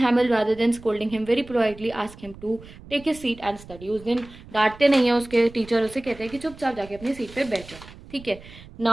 rather than scolding him very politely ask him to take his seat and study. उस दिन डांटते नहीं है उसके टीचर, उसे कहते हैं कि चुपचाप जाके अपनी सीट पे बैठो, ठीक है।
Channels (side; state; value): right; noise; rumble, 19 dB below the sound